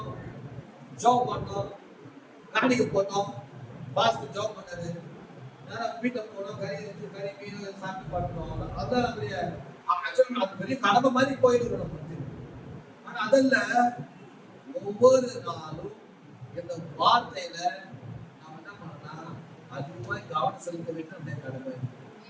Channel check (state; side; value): identical; both; correlation 1.00